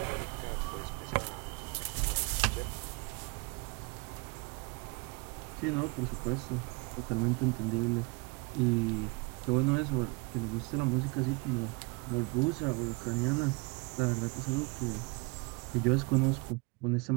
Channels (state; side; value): quieter; left; 28.0 dB